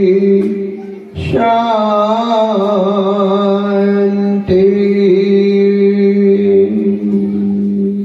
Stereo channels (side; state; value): both; identical; correlation 1.00